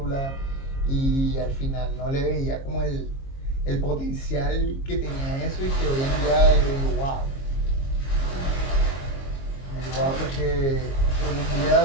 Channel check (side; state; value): right; late; 22 ms